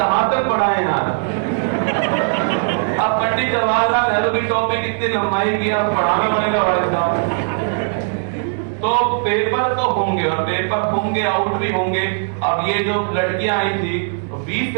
तक पढ़ा है यार। अब पंडित जवाहरलाल नेहरू की टॉपिक इतनी लंबाई की, अब पढ़ाना पड़ेगा भाई साहब। तो पेपर तो होंगे और पेपर होंगे, आउट भी होंगे। अब ये जो लड़कियां आई थी 20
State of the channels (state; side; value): silent; left; 67 dB below the other